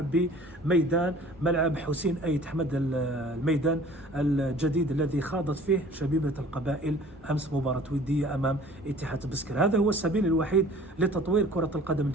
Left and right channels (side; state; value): both; normal; correlation 0.48